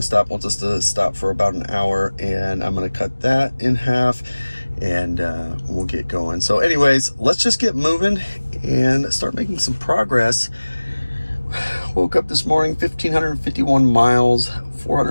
stop wants us to stop for about an hour, and I'm going to cut that in half, and we'll get going. So anyways, let's just get moving and start making some progress. Woke up this morning, 1,551 miles,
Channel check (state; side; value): inverted; both; correlation -1.00